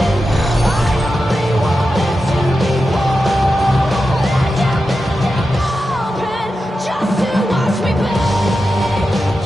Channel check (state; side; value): normal; both; correlation 0.90